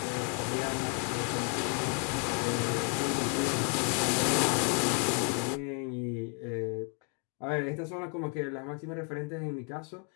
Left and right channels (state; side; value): quieter; right; 39.8 dB